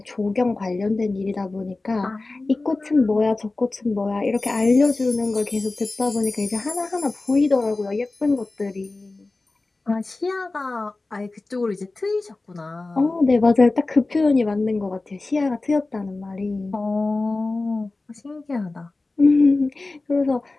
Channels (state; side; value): quieter; right; 3.3 dB